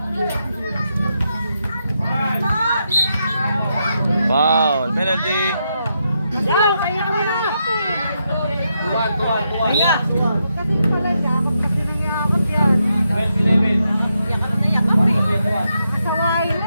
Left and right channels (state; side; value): inverted; both; correlation -0.82